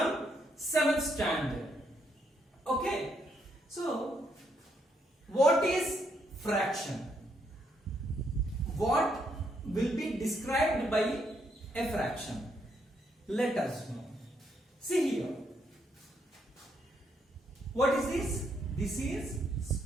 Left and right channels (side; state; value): both; normal; correlation 0.75